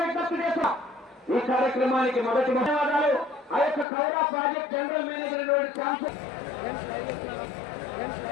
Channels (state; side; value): drops out; right; at 3.9 s